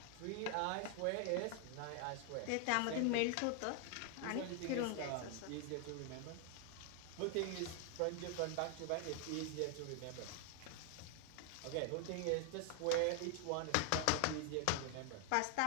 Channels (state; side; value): different; both; correlation 0.00